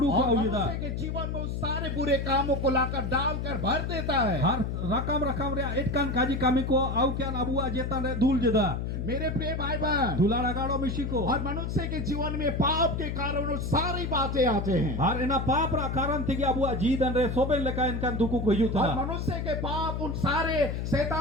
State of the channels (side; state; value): left; noise; hum, 3 dB below the sound